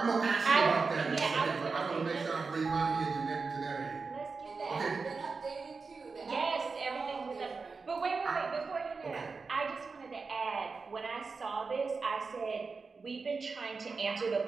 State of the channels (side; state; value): left; quieter; 4.5 dB